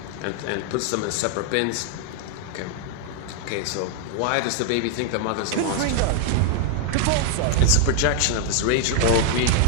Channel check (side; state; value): both; different; correlation 0.00